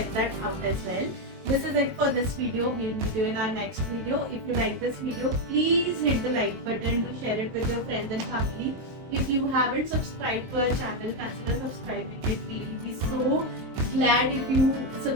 that out as well. This is it for this video. We'll meet you in our next video. If you like this video, please hit the like button, do share it with your friends and family. If you haven't subscribed to our channel, consider subscribing it. We'll be so glad if you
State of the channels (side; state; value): left; late; 23 ms